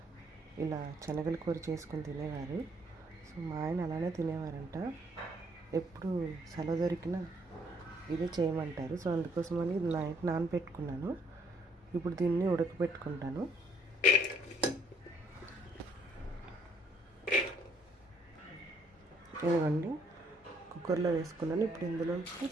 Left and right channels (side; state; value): both; normal; correlation 0.66